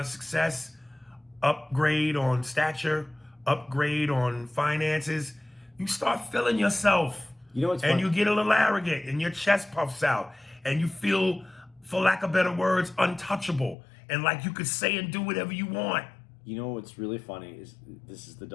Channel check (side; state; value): right; drops out; at 13.8 s